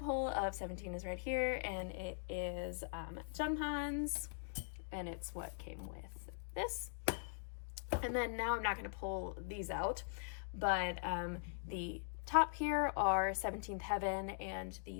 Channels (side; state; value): right; silent; digital silence